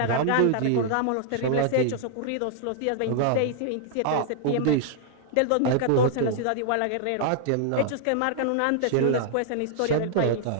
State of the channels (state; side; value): different; both; correlation -0.01